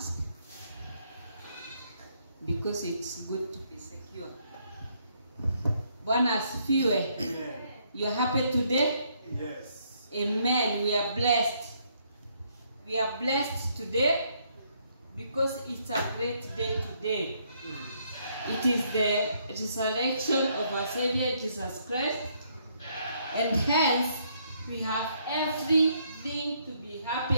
because it's good to be secure. Bwana asifiwe. Amen. You are happy today? Yes. Amen. We are blessed. We are blessed today because it's a great day today. It is the resurrection of our Savior Jesus Christ, and hence we have everything to be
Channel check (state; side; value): inverted; both; correlation -0.71